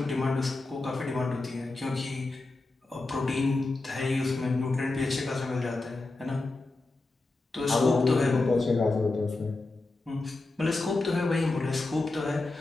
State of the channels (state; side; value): quieter; right; 3.2 dB